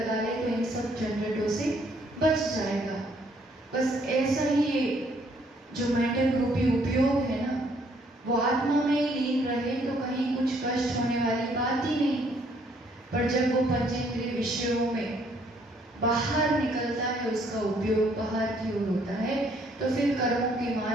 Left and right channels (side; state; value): both; normal; correlation 0.66